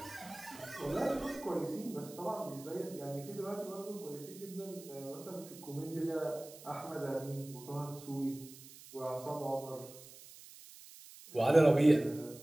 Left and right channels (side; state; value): right; noise; hiss, 18 dB below the sound